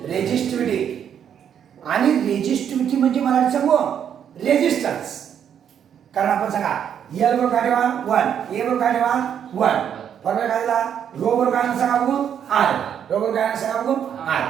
रेजिस्टिव्हिटी. आणि रेजिस्टिव्हिटी म्हणजे मराठी सांगू रेजिस्टन्स. कारण आपण सांगा एल बरोबर काय ठेवा 1, ए बरोबर काय ठेवा 1. फॉर्म्युला काय दिला रो बरोबर काय सांगा बघू आर, रो बरोबर काय सांगा बघू आर.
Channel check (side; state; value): left; quieter; 8.7 dB